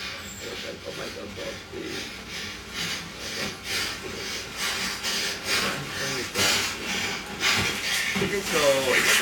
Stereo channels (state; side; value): identical; both; correlation 1.00